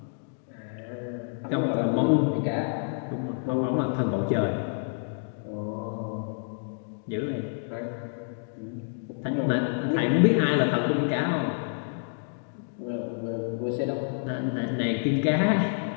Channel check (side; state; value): right; silent; digital silence